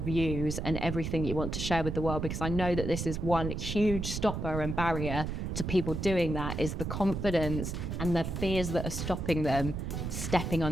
views and everything you want to share with the world, because I know that this is one huge stopper and barrier to people doing that, is the confidence and the fears that are stopping them stepping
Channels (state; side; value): noise; right; rumble, 4 dB below the sound